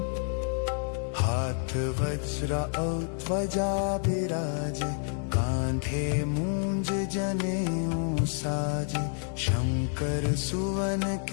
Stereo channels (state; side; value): silent; right; 59 dB below the other